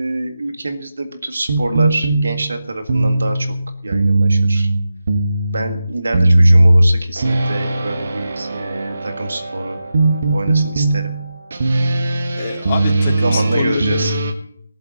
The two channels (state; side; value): inverted; both; correlation -0.91